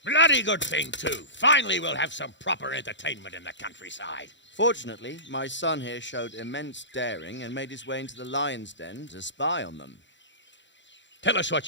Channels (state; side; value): late; right; 0.53 ms